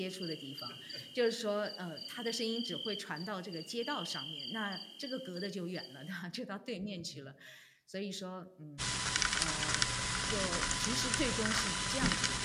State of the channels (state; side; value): identical; both; correlation 1.00